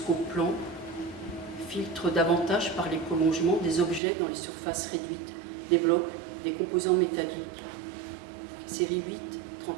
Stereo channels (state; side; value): drops out; left; at 4.0 s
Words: plan, filtre davantage par les prolongements des objets dans les surfaces réduites, des blocs, des composants métalliques. Série 8-31.